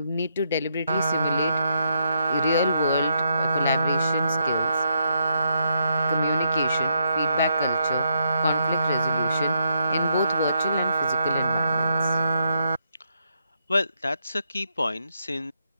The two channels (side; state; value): both; inverted; correlation -0.78